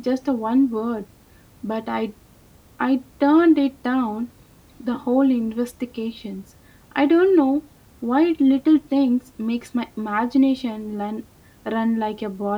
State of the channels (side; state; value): both; identical; correlation 1.00